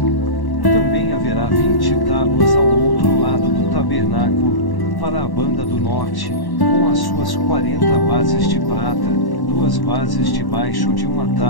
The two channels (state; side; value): late; right; 1.1 ms